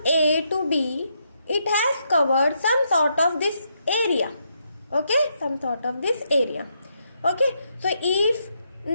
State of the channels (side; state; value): both; inverted; correlation -0.78